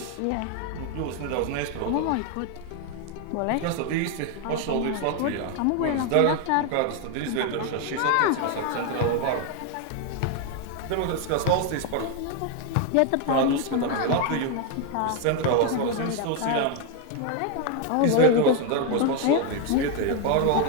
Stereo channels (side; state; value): both; different; correlation 0.01